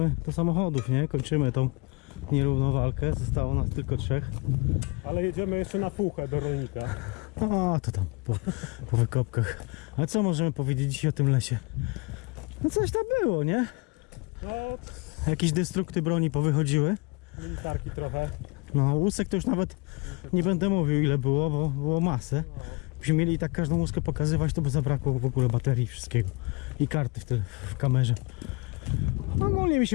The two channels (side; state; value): right; quieter; 27.1 dB